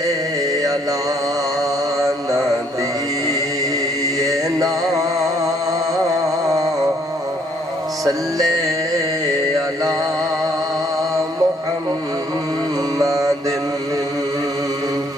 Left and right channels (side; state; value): both; normal; correlation 0.65